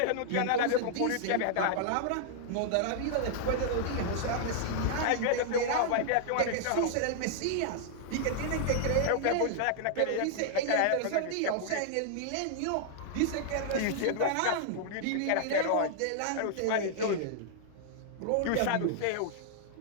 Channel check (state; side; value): different; both; correlation -0.01